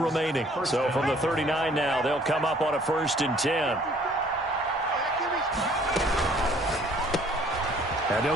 So from the 39 now, they'll come up on a 1st and 10. And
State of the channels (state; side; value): normal; both; correlation 0.58